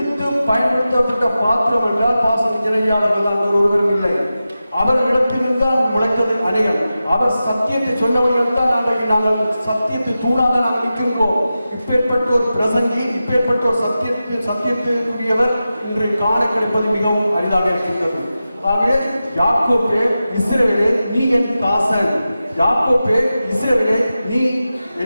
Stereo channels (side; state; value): both; inverted; correlation -0.93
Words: பயன்படுத்தப்பட்ட பாத்திரம் என்றால் பாசன் இணையாளர்கள் தான் ஒருவரும் இல்லை. அவர்களிடத்திலிருந்து தான் முளைத்தது அநேகம். அவர் சத்தியத்தை சொன்னவர்கள் தான் நாங்கள் சத்தியத்தை தூணாக நாங்கள் நிற்கின்றோம். இப்பேற்பட்ட ஒரு பிரசங்கி, இப்பேற்பட்ட ஒரு சத்தியத்திற்குரியவர் இன்று காண கிடைப்பது மிகவும் அரிதாக இருக்கின்றது. ஆகவே யாக்கோபே இஸ்ரவேலே நீ என் தாசன். யாக்கோபே இஸ்ரவேலே நீ